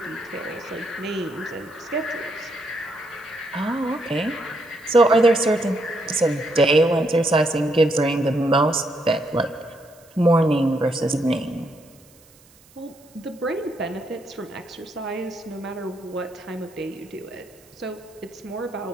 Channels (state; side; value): noise; right; hiss, 28 dB below the sound